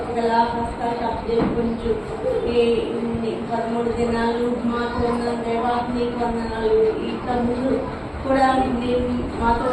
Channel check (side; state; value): both; identical; correlation 1.00